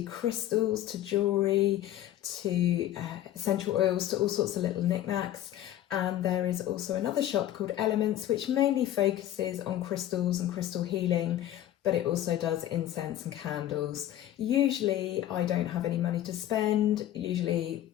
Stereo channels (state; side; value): quieter; right; 12.6 dB